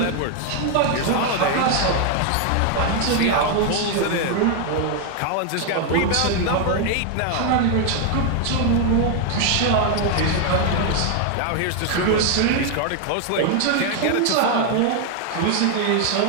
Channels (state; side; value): different; both; correlation 0.01